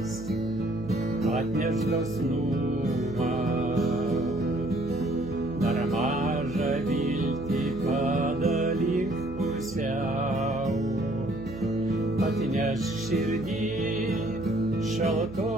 atneš dosnumą, dar mažą viltį padalink pusiau, atneš širdį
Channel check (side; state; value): right; noise; hum, 13 dB below the sound